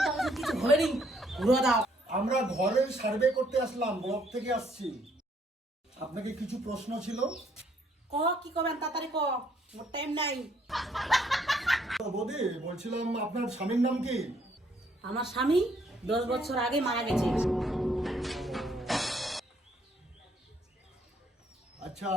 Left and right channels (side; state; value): both; normal; correlation 0.68